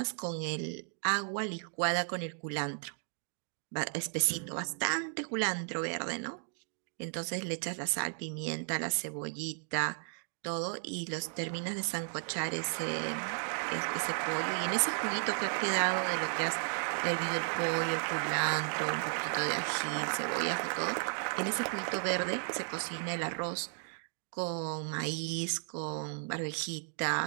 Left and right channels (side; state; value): left; silent; 55 dB below the other